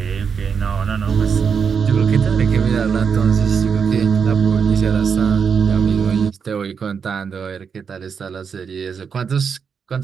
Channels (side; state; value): left; quieter; 6.4 dB